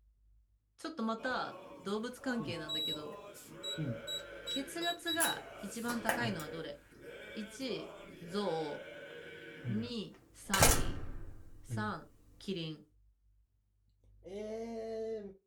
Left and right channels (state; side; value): identical; both; correlation 1.00